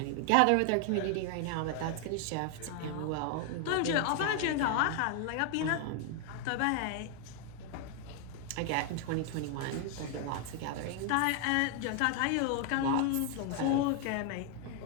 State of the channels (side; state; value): both; different; correlation 0.00